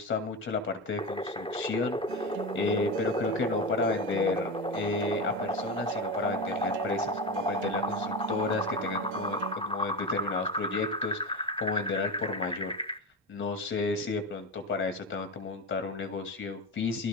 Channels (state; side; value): normal; both; correlation 0.21